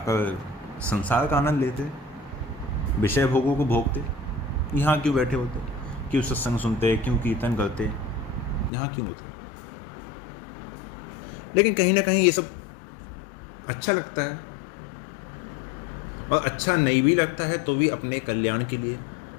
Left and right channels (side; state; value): right; drops out; at 8.7 s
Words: संसार का आनंद लेते, विषय भोगों को भोगते। यहाँ क्यों बैठे होते? क्यों सत्संग सुनते, क्यों कीर्तन करते, यहाँ क्यों होते? लेकिन कहीं ना कहीं ये सब अच्छा लगता है, और अच्छा नहीं भी लगता है तो भी अपने कल्याण के लिए,